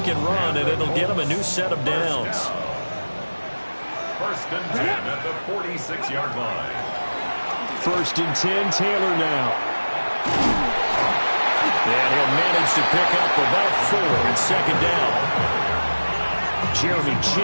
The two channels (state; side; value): inverted; both; correlation -1.00